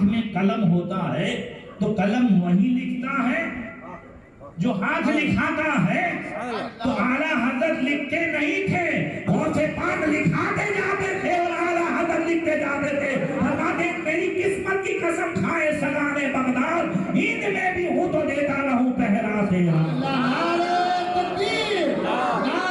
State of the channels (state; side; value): identical; both; correlation 1.00